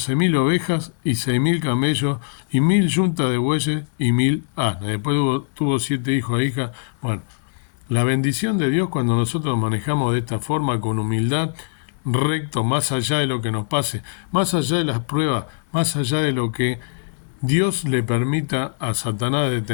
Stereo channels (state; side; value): silent; right; 64 dB below the other